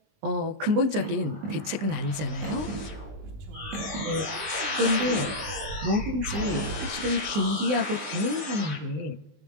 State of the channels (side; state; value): left; late; 20 ms